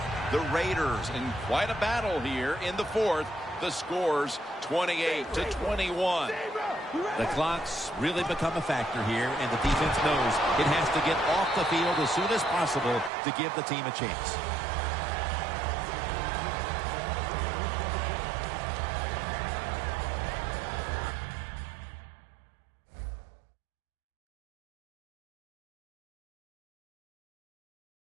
The Raiders in quite a battle here in the fourth. The score's 28-21. The clock's really become a factor here, and the defense knows it has to get off the field as soon as possible to give the team a chance.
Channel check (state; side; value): drops out; left; at 13.1 s